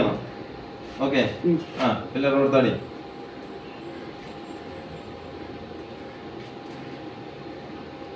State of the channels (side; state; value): both; identical; correlation 1.00